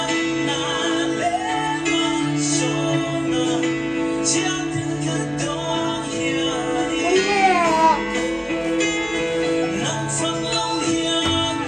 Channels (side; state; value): both; identical; correlation 1.00